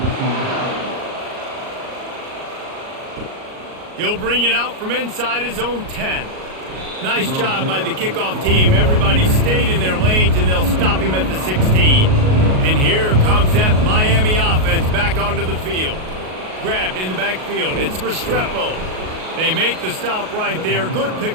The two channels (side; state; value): left; late; 38 ms